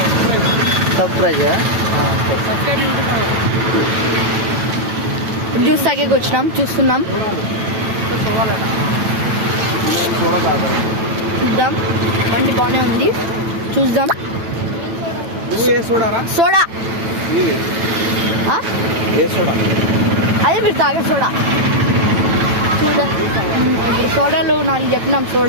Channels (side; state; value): left; late; 9.0 ms